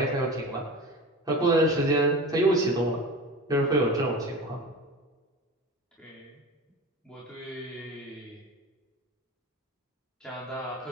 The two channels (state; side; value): normal; both; correlation 0.32